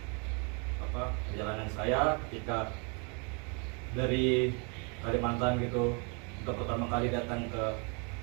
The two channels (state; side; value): quieter; left; 34.8 dB